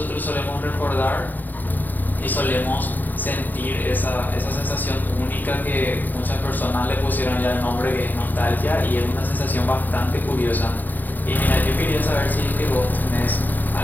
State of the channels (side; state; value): right; late; 0.087 ms